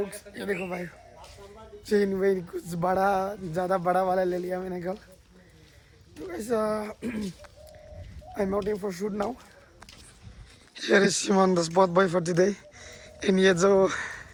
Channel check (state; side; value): identical; both; correlation 1.00